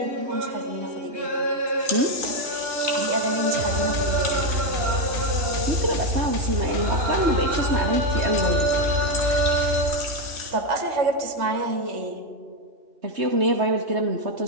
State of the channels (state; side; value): late; left; 3.3 ms